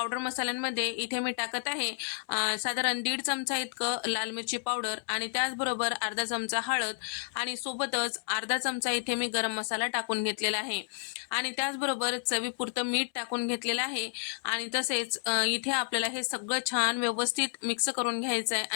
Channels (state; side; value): silent; right; 57 dB below the other